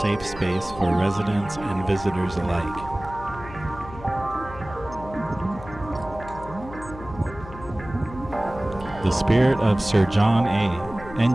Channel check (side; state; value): left; noise; hum, 15 dB below the sound